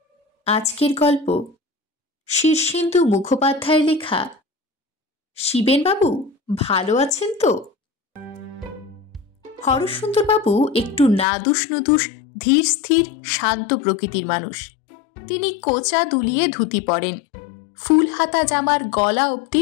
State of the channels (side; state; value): right; drops out; at 11.2 s